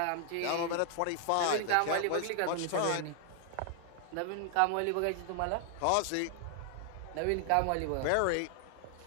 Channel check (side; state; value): both; different; correlation 0.00